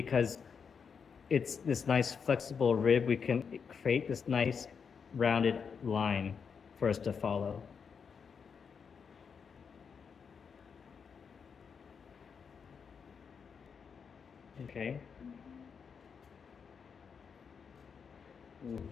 it's this nice flexible rib, we can create this nice rounded line for us to follow. Okay. Ooh.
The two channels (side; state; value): right; quieter; 6.3 dB